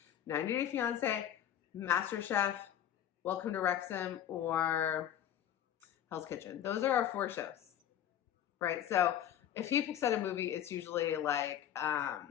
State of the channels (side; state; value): right; quieter; 10.6 dB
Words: 90 Day Fiance, MasterChef, Welcome to Wrexham, or Hell's Kitchen. Those are our 4 shows, right? So if he picks out a movie, it's usually like a